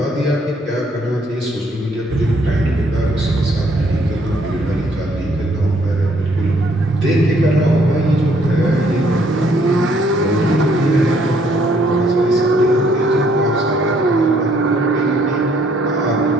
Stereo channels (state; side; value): normal; both; correlation 0.66